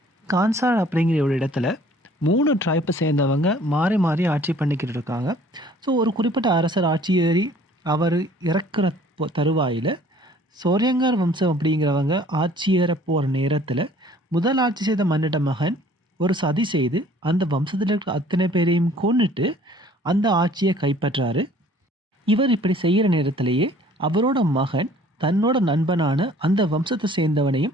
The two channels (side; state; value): both; normal; correlation 0.54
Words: கான்சார் அப்படிங்கிற ஒரு இடத்துல 3 ட்ரைப்பை சேர்ந்தவங்க மாறி மாறி ஆட்சி பண்ணிக்கிட்டு இருக்காங்க. ஸோ ஒரு குறிப்பிட்ட அரசர் ஆட்சி ஏறி அவர் இறக்குற தருவாயில் சோரியங்கார் வம்சம் அப்படிங்கிறவங்க ஆட்சி ஏற போகிற நேரத்தில் முதல் ஆட்சி செய்த மன்னிட்ட மகன் ஒரு சதி செய்து அந்த வம்சத்தில் இருக்கிற அத்தனை பேரையும் கொன்னுட்டு அந்த ஆட்சியை கைப்பற்றாரு. இவர் இப்படி செய்கிற நேரத்திலேயே அவரோட மகன் தன்னோட நண்பனான அந்த வம்சத்தை சேர்ந்தவனையும்